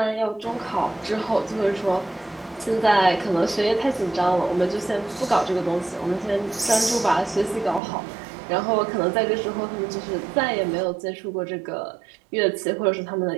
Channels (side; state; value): left; drops out; at 7.8 s